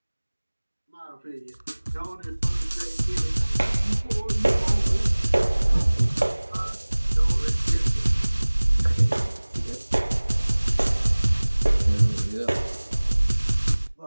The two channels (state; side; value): inverted; both; correlation -1.00